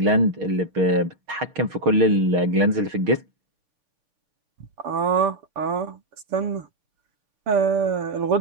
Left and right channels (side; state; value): left; late; 6.4 ms